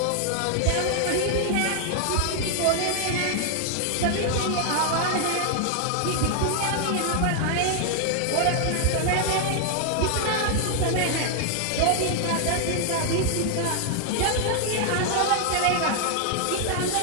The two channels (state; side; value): different; both; correlation 0.00